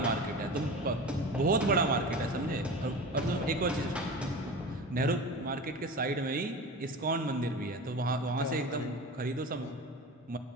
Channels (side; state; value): both; normal; correlation 0.32